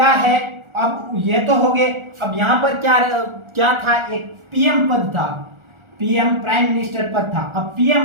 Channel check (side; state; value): left; late; 1.4 ms